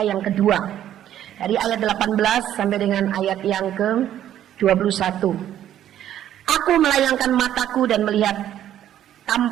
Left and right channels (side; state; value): left; quieter; 11.4 dB